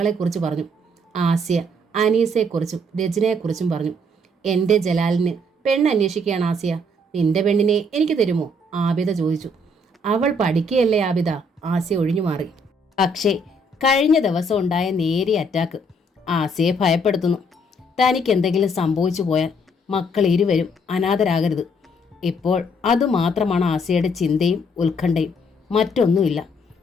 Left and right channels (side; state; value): both; normal; correlation 0.67